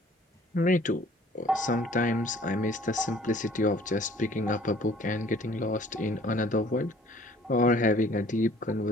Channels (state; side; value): normal; both; correlation 0.54